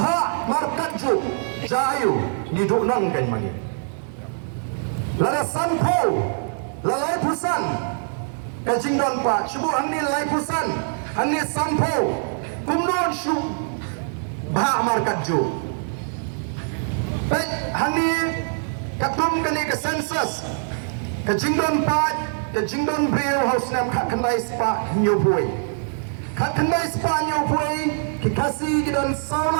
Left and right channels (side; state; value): left; silent; digital silence